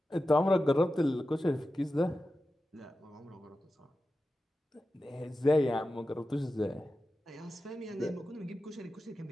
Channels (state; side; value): normal; both; correlation 0.93